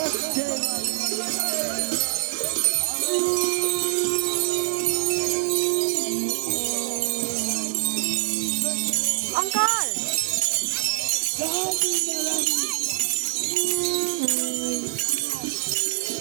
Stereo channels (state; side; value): silent; left; 62 dB below the other